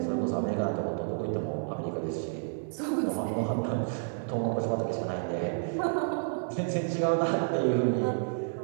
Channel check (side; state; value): left; silent; 58 dB below the other